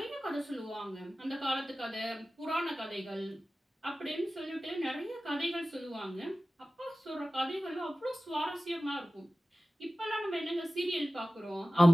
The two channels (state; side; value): normal; both; correlation 0.96